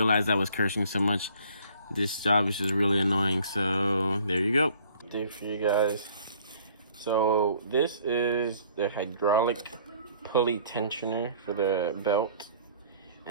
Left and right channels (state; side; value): inverted; both; correlation -0.56